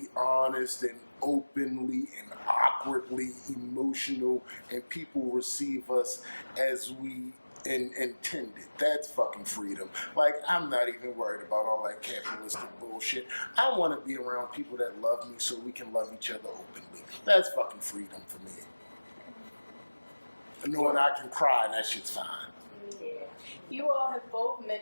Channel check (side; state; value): both; inverted; correlation -1.00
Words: honest and openly and awkwardly emotional, and people receive us as we intended. That's fucking freedom. Like, I'm not even worried about all that capitalistic bullshit. I want to be around people that love me so we can love each other openly. That's fucking freedom for me. Knowing I can cry and that shit's fine. Yeah. You all have both